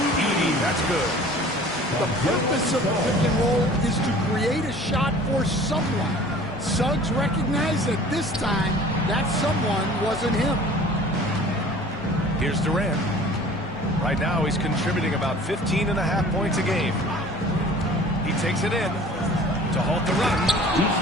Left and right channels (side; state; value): both; normal; correlation 0.47